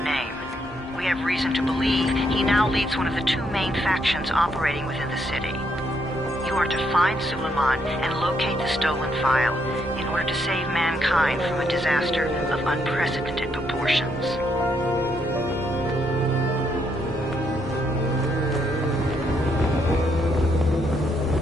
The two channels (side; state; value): both; normal; correlation 0.75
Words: name. We have reason to believe he now leads one of the two main factions operating within the city. You are to find Suleiman and locate the stolen file in order to save mankind from a disaster of unprecedented proportions.